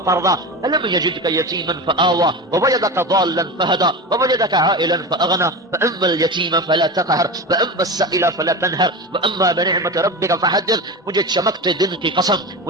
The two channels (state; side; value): normal; both; correlation 0.26